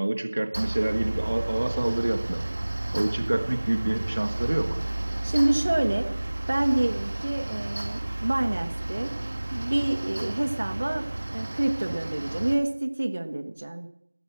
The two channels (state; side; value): inverted; both; correlation -1.00